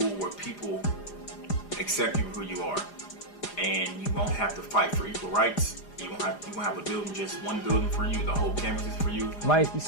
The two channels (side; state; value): right; late; 4.9 ms